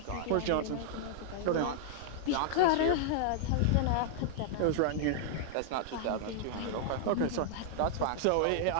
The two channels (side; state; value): both; different; correlation -0.01